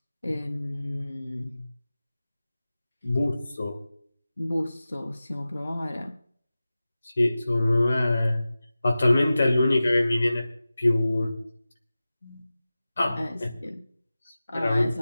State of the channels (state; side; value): inverted; both; correlation -0.96